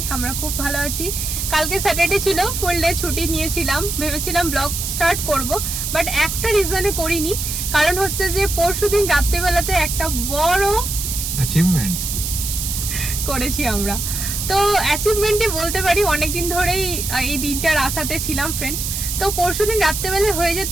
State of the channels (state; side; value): noise; right; hiss, 3 dB below the sound